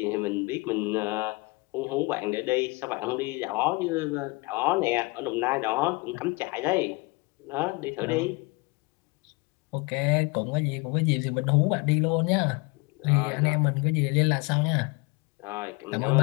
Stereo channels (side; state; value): right; quieter; 25.9 dB